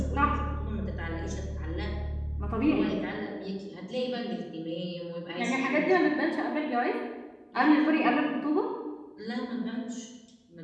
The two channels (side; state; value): both; identical; correlation 1.00